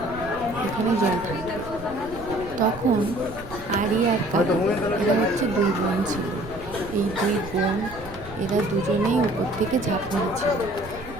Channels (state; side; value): noise; right; rumble, 15 dB below the sound